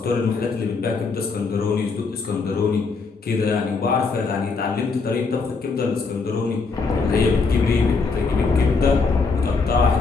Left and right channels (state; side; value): quieter; right; 4.5 dB